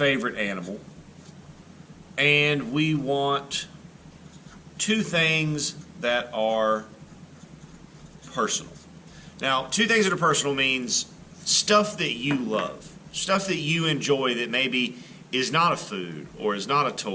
animal, and we want 2 things that are personal. Now, 2 things that are personal means stuff that you love, stuff that you enjoy that maybe is not a food, or is not a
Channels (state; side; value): identical; both; correlation 1.00